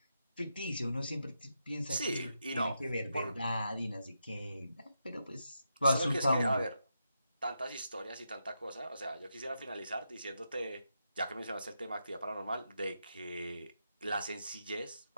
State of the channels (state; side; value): inverted; both; correlation -0.85